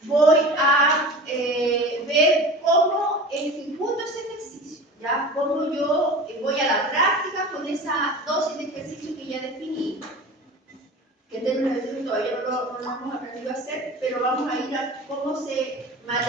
voy a ver cómo ejecuto ese ejercicio, ¿ya? Cómo yo voy a la práctica con esa dosis de ejercicio que ya definí, que en términos de tiempo todavía no lo hemos aprendido a hacer, pero vamos a ir a cómo se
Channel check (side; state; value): both; normal; correlation 0.36